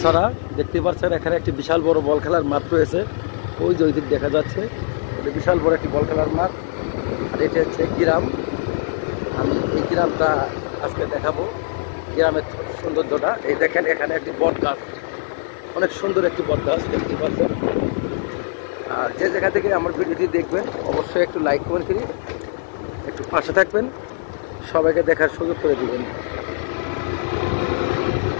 দেখতে পাচ্ছেন, এখানে একটি বিশাল বড় বল খেলার মাঠ রয়েছে। ওই যে ওই দিক দেখা যাচ্ছে, এটা বিশাল বড় একটি বল খেলার মাঠ। আর এটা হচ্ছে গ্রাম। আমি এই গ্রামটা আজকে দেখাবো, গ্রামের সৌন্দর্যটা। এই দেখেন, এখানে একটি বট গাছ, অনেক সুন্দর একটি বট গাছ দেখতে পাচ্ছেন। আর যে জায়গা থেকে আমার ভিডিওটি দেখবেন অবশ্যই একটু লাইক কমেন্ট করি, একটু পাশে থাকবেন, সবাইকে দেখার সুযোগ করে দিবেন।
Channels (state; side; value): silent; right; 65 dB below the other